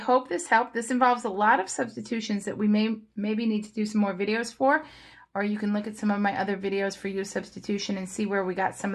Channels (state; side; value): identical; both; correlation 1.00